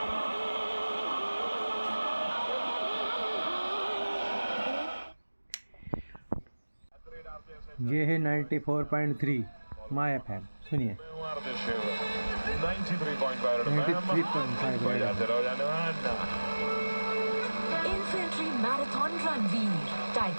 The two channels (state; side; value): inverted; both; correlation -1.00